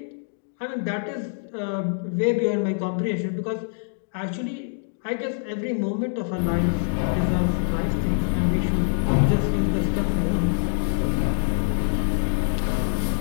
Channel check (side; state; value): right; silent; digital silence